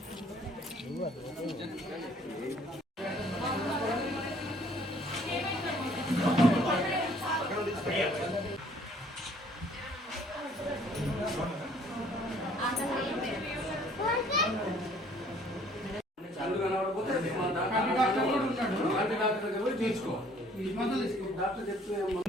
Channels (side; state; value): both; normal; correlation 0.58